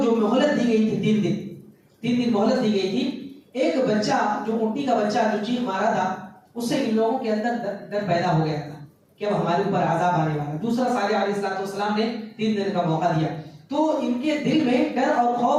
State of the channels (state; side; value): identical; both; correlation 1.00